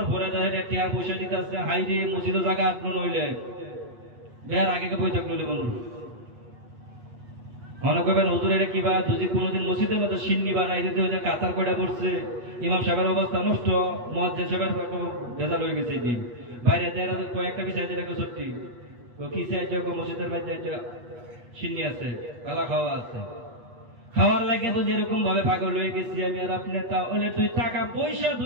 পরে টিয়া পয়সা দিতে আসছে, হাই রে মসজিদের জায়গা আপনার নইলে বের আগে বৈঠক নইলে মানুষ মনে করবেন হুজুর এটা কিবা। যদি কোনোদিন মসজিদের মধ্যে সিন্নি বানাই দিতে হয়েছে, কাতার কয়টা পড়ছে, ইমাম সাহেবের অবস্থা নষ্ট, মুয়াজ্জিন সাহেবের ভেজাল হয়ে গেছে। দিন বাইরে কয়েকটা বিষয় সত্যি কি চাইছে মসজিদের বাইরে সিন্নি আছে, কালা খাওয়া আছে, খাওয়ার লাগে তো যেরকম ভাবে পাগল হয়ে গেছি আমি আর আপনি। তাহলে 2 টাকা পয়সা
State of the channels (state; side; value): late; left; 8.2 ms